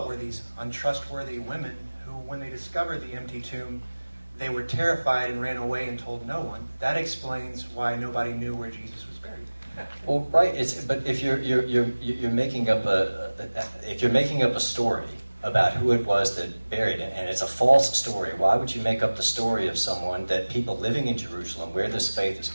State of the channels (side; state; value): both; inverted; correlation -1.00